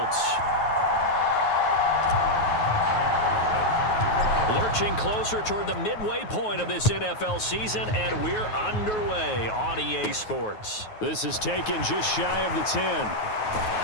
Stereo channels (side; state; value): right; late; 9.4 ms